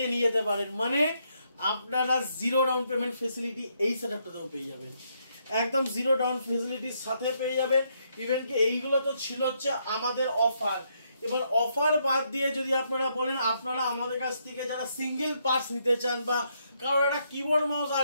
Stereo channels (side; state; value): both; inverted; correlation -0.75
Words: নিয়ে যেতে পারেন। মানে আপনারা জিরো ডাউন পেমেন্ট ফেসিলিটি এই সেটআপটাতেও পেয়ে যাবেন, একদম জিরো ডাউন ফেসিলিটির সাথে পেয়ে যাবেন। ইভেন কি এইগুলো তো ছিল হচ্ছে আমাদের অফার। এবার অফার বাদ দিয়ে যদি আপনারা বলেন আপনারা আমাদের কাছ থেকে যারা সিঙ্গেল পার্টস নিতে চান বা কারোর একটা কিবোর্ড মাউস